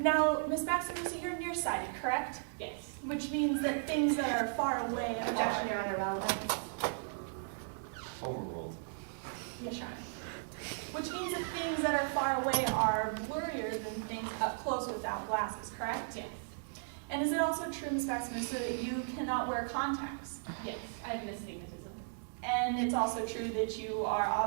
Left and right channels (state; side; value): silent; left; 54 dB below the other